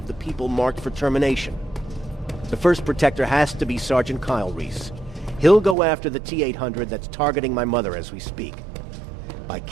the people marked for termination. The first Protector has to be Sergeant Kyle Reese. He'll go after the T-800 that's targeting my mother as we speak. By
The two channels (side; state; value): left; drops out; at 5.8 s